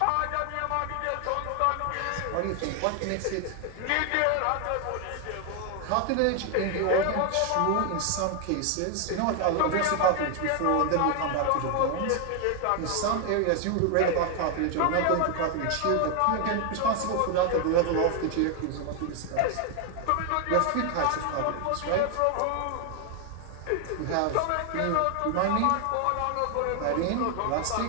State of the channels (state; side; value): different; both; correlation 0.00